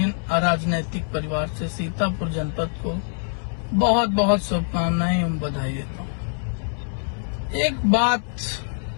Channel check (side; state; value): right; silent; 62 dB below the other